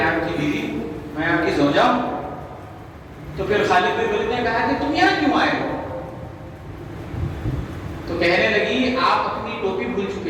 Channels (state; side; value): identical; both; correlation 1.00